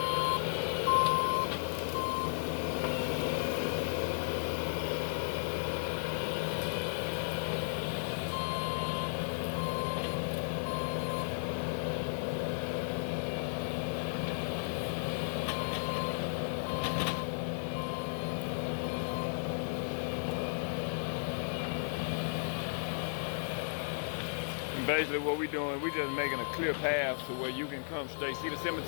Basically what we're doing, we just making a clear path to where you can come straight. See the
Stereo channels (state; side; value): silent; right; digital silence